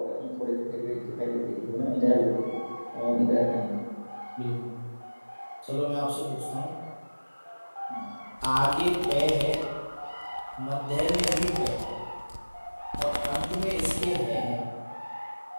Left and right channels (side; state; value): both; inverted; correlation -1.00